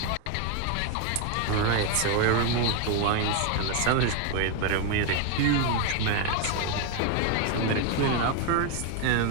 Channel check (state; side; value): different; both; correlation 0.01